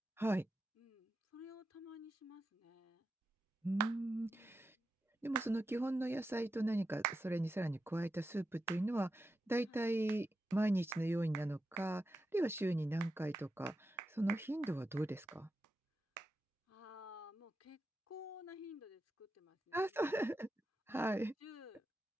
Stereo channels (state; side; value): normal; both; correlation 0.89